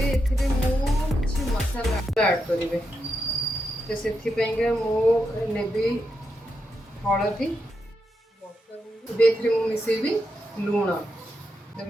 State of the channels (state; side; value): normal; both; correlation 0.85